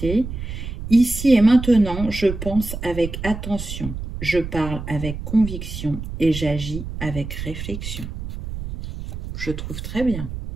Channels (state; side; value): noise; right; rumble, 8 dB below the sound